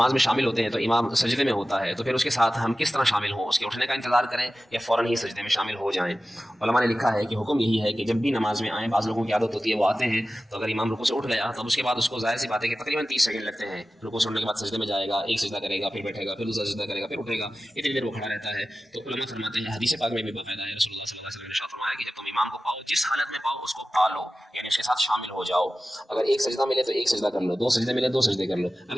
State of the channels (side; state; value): both; normal; correlation 0.95